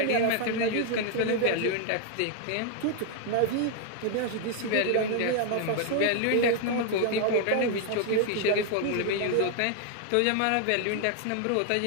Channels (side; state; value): both; different; correlation 0.00